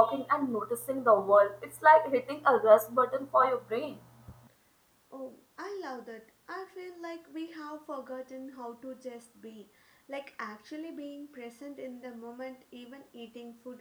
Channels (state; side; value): identical; both; correlation 1.00